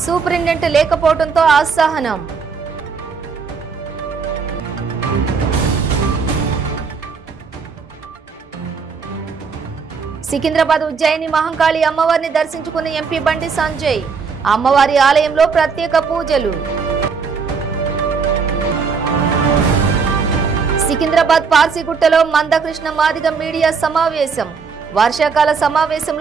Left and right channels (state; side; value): quieter; left; 5.4 dB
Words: సూపరింటెండెంట్ లేకపోవడంతో అసహనం. సికింద్రాబాద్ ఉజ్జయిని మహంకాళి అమ్మవారిని దర్శించుకున్న ఎంపీ బండి సంజయ్. అమ్మవారి ఆలయంలో ప్రత్యేక పూజలు. సికింద్రాబాద్ పార్సిగుట్టలో మందకృష్ణ మాదిగ మీడియా సమావేశం. వర్షాకాల